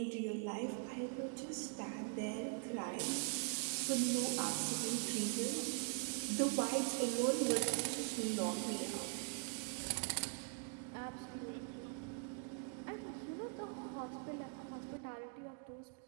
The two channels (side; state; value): left; quieter; 39.8 dB